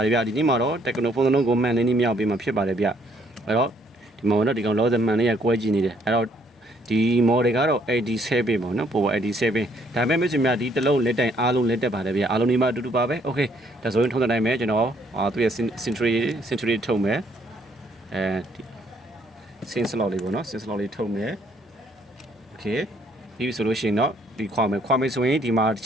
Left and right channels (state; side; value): normal; both; correlation 0.67